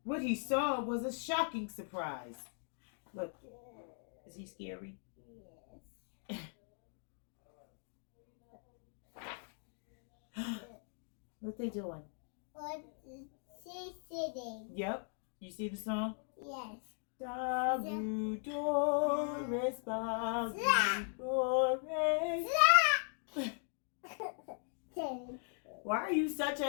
What he saw was a shocking surprise. Look, is he scary? What they doing? What is she sitting? Yep. You see the song? Yes. Dabu Doris, Babu Doris. Why are you such a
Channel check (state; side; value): silent; right; 52 dB below the other